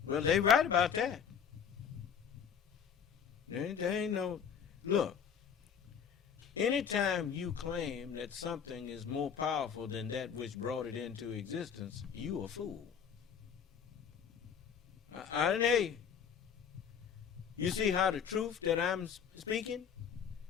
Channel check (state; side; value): quieter; right; 7.5 dB